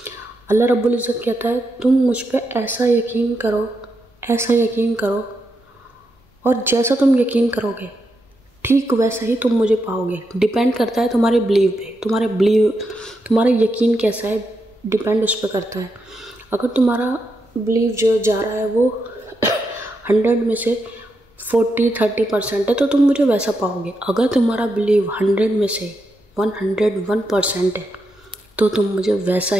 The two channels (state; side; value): normal; both; correlation 0.83